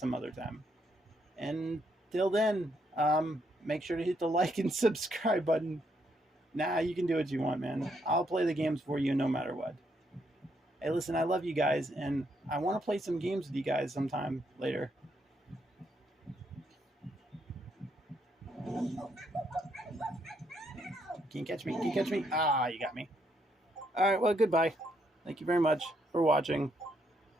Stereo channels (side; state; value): both; normal; correlation 0.75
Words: some other time. And till then, make sure to hit the like and subscribe button. Nah, you can do what you want, man. I'll play the games for you no matter what. Hey, listen, I love you guys, and I want to play some games with you guys sometime later. Can you catch me? Can you catch me? Ah, you got me. All right, well, goodbye. Thank you very much for watching.